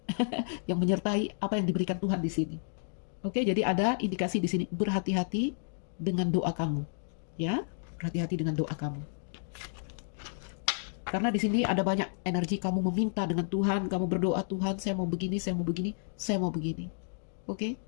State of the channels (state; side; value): silent; right; digital silence